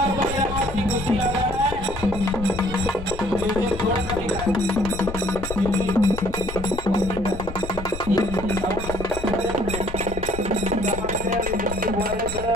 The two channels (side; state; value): left; noise; rumble, 9 dB below the sound